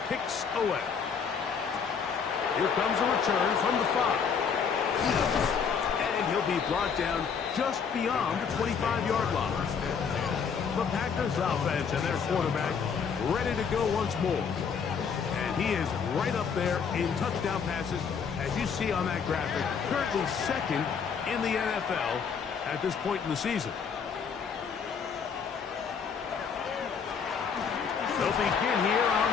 kick's away. Here comes a return from the 5. And he'll be brought down just beyond the 25-yard line. The Packers offense and their quarterback ready to go once more. And he is right up there in touchdown passes, as you see on that graphic, currently second in the NFL at this point in the season. They'll begin here on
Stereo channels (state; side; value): quieter; right; 6.4 dB